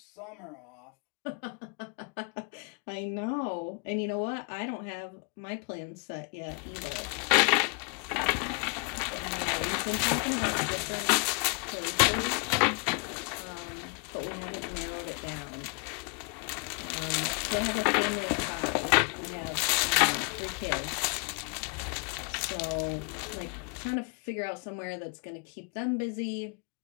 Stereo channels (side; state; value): right; quieter; 36.1 dB